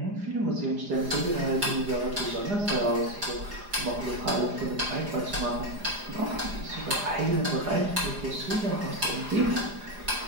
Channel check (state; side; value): late; left; 4.9 ms